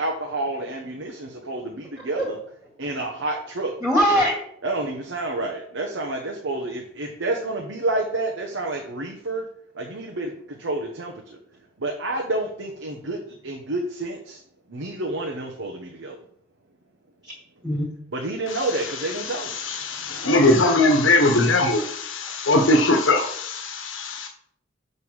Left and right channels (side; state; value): both; normal; correlation 0.21